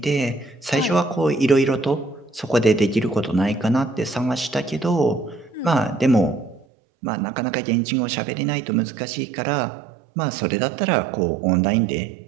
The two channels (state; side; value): drops out; left; at 6.7 s